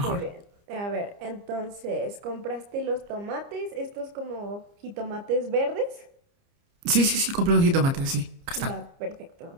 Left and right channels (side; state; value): left; late; 29 ms